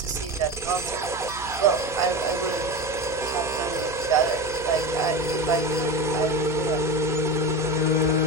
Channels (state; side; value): noise; right; hum, 16 dB below the sound